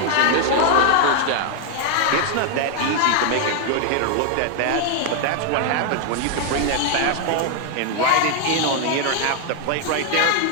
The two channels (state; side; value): different; both; correlation 0.00